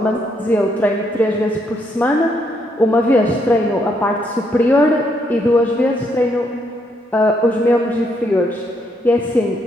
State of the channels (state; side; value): normal; both; correlation 0.74